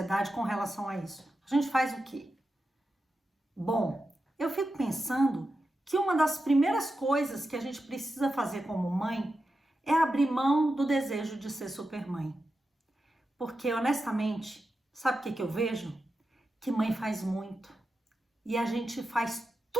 com relação a isso, a gente faz o quê? Bom, eu fico pensando que uma das primeiras coisas que a gente precisa fazer como mãe é abrir mão do desejo de ser supermãe. Porque, honestamente, sabe o que eu vejo? Que mãe faz muito. E a gente faz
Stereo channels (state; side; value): normal; both; correlation 0.90